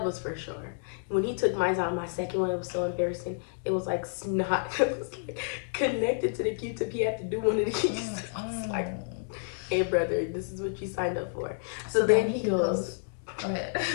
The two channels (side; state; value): right; silent; digital silence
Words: was for sure. When he took mine out, my second one, it was so embarrassing. It was like snot. It was like connected to the Q-tip. He had to do one of these. I was like, hey, brother, this is what you signed up for. So then he goes. Go ahead.